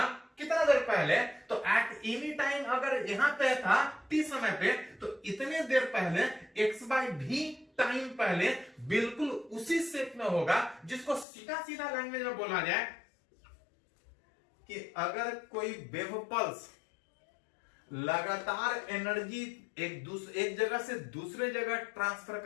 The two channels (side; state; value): right; drops out; at 11.2 s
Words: कितना देर पहले, तो एट एनी टाइम अगर यहां पे था t समय पे, तो इतने देर पहले x/v टाइम पहले बिल्कुल उसी शेप में होगा, जिसको सीधा सीधा लैंग्वेज में बोला जाए कि अगर कोई वेव पल्स लगातार एनर्जी एक जगह से दूसरे जगह ट्रांसफर